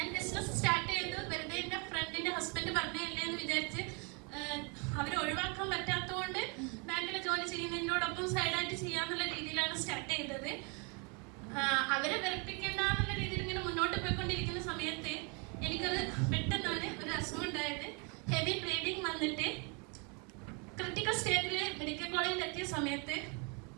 ബിസിനസ് സ്റ്റാർട്ട് ചെയ്ത് വെറുതെ എൻ്റെ ഫ്രണ്ടിൻ്റെ ഹസ്ബൻഡ് പറഞ്ഞല്ലേ എന്ന് വിചാരിച്ച് അവരെ ഒഴിവാക്കാൻ പറ്റാത്തതുകൊണ്ട് ബാങ്കിലെ ജോലി ചെയ്യുന്നതിനോടൊപ്പം സൈഡായിട്ട് ചെയ്യാന്നുള്ള രീതിയിലാണ് സ്റ്റാർട്ട് ചെയ്തത്. അവരെ വെറുപ്പിക്കേണ്ട എന്നുള്ള രീതിയിൽ ഇങ്ങനെ മുന്നോട്ട് പോയിക്കൊണ്ടിരിക്കുന്ന സമയത്ത് എനിക്കത് പെട്ടെന്നാണ് ഒരു അസുഖം ഉണ്ടായത്. ഹെവി ബ്ലീഡിങ് വന്നിട്ട് ക്രിട്ടിക്കൽ സ്റ്റേജിൽ മെഡിക്കൽ കോളേജിൽ എത്തിയ സമയത്ത്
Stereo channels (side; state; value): left; quieter; 33.5 dB